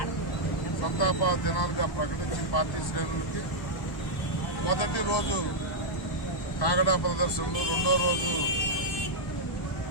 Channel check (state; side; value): late; right; 1.1 ms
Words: సంతాప దినాలుగా ప్రకటించి పార్టీ శ్రేణులకి మొదటి రోజు కాగడా ప్రదర్శనలు, రెండో రోజు